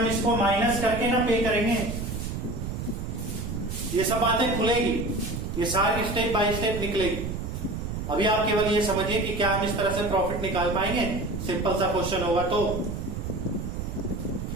इसको माइनस करके ना पे करेंगे। ये सब बातें खुलेगी, ये सारी स्टेप बाय स्टेप निकलेगी। अभी आप केवल ये समझिए कि क्या हम इस तरह से प्रॉफिट निकाल पाएंगे। सिंपल सा क्वेश्चन होगा तो।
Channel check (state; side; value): noise; right; rumble, 5 dB below the sound